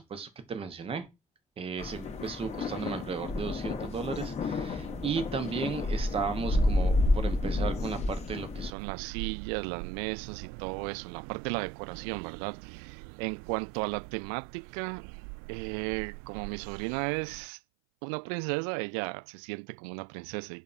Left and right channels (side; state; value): left; drops out; at 8.7 s